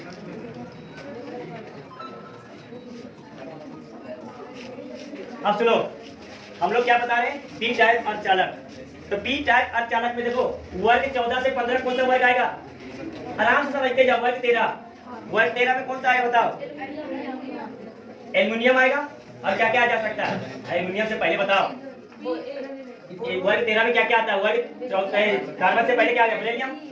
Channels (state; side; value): identical; both; correlation 1.00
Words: अब सुनो, हम लोग क्या बता रहे हैं? पी टाइप अर्धचालक। तो पी टाइप अर्धचालक में देखो वर्ग 14 से 15 कौन सा वर्ग आएगा? आराम से समझते जाओ। वर्ग 13 में कौन सा आएगा बताओ? एल्युमिनियम आएगा। और क्या क्या आ जा सकता है? एल्युमिनियम से पहले बताओ, वर्ग 13 में क्या क्या आता है? वर्ग 14 कार्बन से पहले क्या आ गया? बेरिलियम।